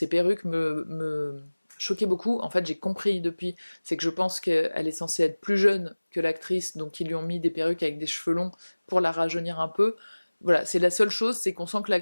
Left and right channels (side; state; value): both; inverted; correlation -1.00